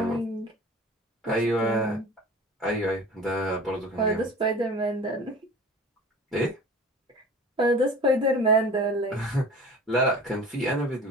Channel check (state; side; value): normal; both; correlation 0.40